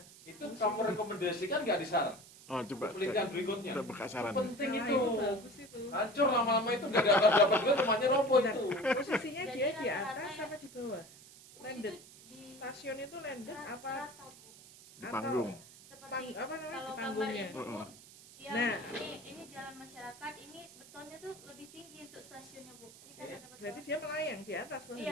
Itu kamu rekomendasikan nggak di saran? Oh coba. Penelitian berikutnya. Kita buka saran. Penting Nah, itu. bagus itu. Hancur lama-lama itu nggak dapat juga rumahnya roboh Bentar, itu. posisinya Jadi dia di rata-rata atas ya- apa di bawah? Bus Landed. itu di Stasiun itu landed apa? rata Bu. Di panggung. Seperti Apa namanya kalau di gambar panggungnya? itu Heeh. ya, Nah. ini jalan masyarakat, ini betonnya tuh lebih tinggi untuk stasiunnya Bu. Ini kan Iya. ada beton. Berarti dia melayang di atas tuh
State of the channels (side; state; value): right; noise; hiss, 20 dB below the sound